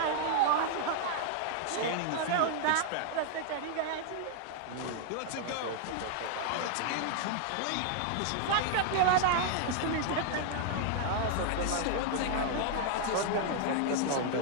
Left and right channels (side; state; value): both; different; correlation 0.00